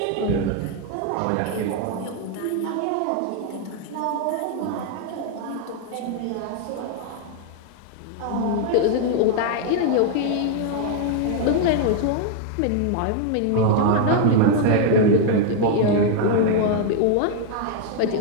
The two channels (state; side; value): different; both; correlation 0.00